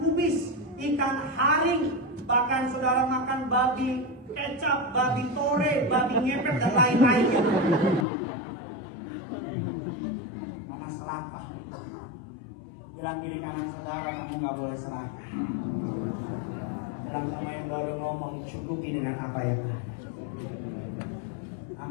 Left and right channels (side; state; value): right; drops out; at 8.1 s